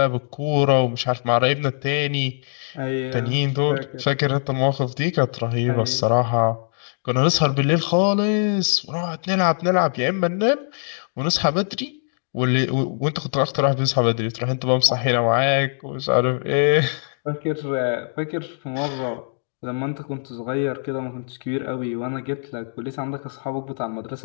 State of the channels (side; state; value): right; silent; digital silence